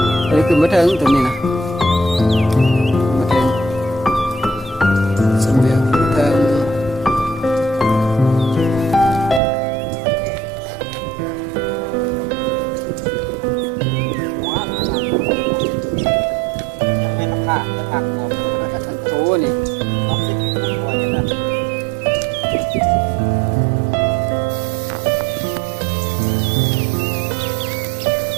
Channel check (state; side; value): drops out; left; at 9.4 s